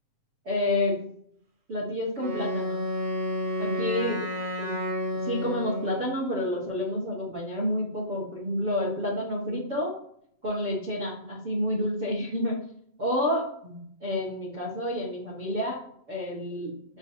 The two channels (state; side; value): late; left; 7.4 ms